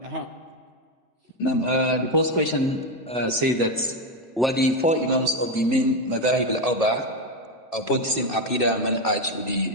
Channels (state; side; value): normal; both; correlation 0.09